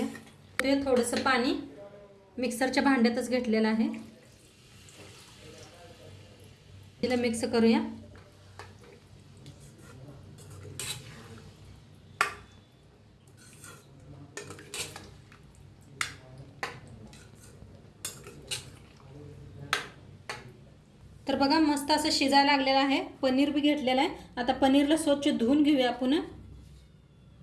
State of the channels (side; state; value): both; identical; correlation 1.00